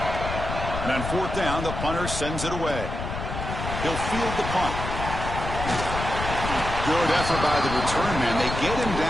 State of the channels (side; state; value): left; noise; rumble, 5 dB below the sound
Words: And on fourth down, the punter sends it away. He'll field the punt. Good effort by the return man. They get him